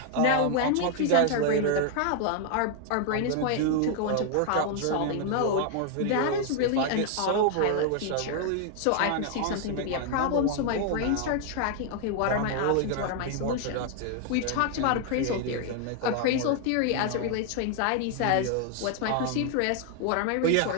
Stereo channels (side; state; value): both; different; correlation 0.00